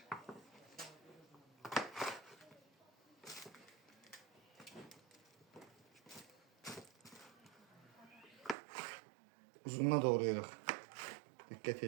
Uzununa doğrayırıq. Dikkat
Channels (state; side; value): drops out; left; at 8.6 s